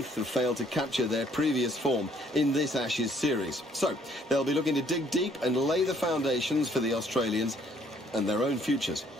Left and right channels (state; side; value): normal; both; correlation 0.63